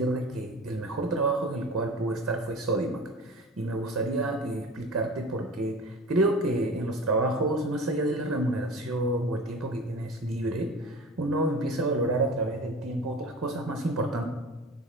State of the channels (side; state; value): both; normal; correlation 0.36